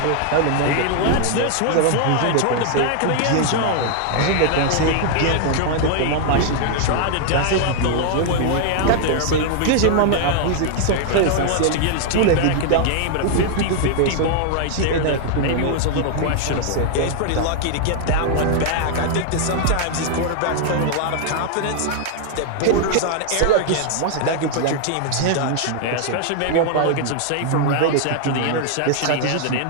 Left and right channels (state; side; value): different; both; correlation 0.00